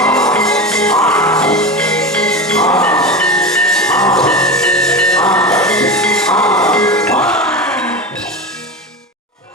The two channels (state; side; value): normal; both; correlation 0.24